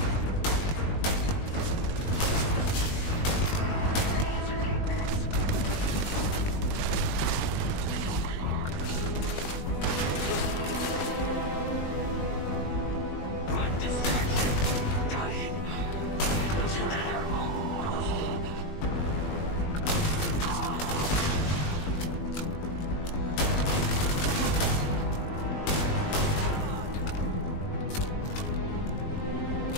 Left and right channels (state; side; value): late; right; 20 ms